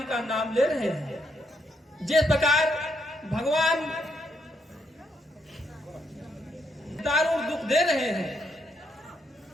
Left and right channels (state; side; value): normal; both; correlation 0.76